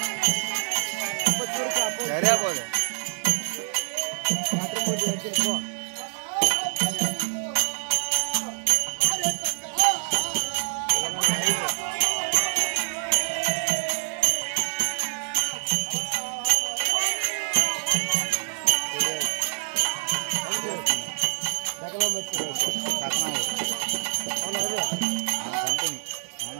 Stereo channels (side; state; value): left; silent; digital silence